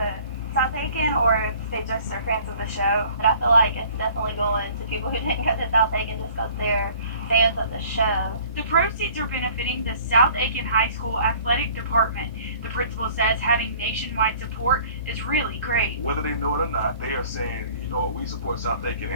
South Aiken or if they just are fans of the show. But I feel like it's definitely going to people who didn't go to South Aiken just because they're fans of the show. The proceeds are benefiting the South Aiken High School athletic department. The principal says having nationwide support is really great. Whether they know it or not, they are saying, you know, we support South Aiken,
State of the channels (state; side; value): inverted; both; correlation -0.51